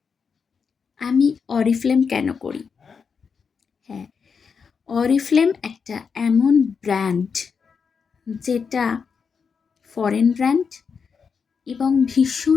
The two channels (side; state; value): right; quieter; 5.9 dB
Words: আমি অরিফ্লেম কেন করি। হ্যাঁ, অরিফ্লেম একটা এমন ব্র্যান্ড যেটা ফরেন ব্র্যান্ড এবং